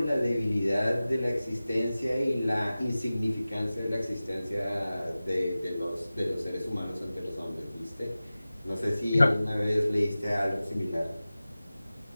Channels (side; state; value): both; inverted; correlation -0.96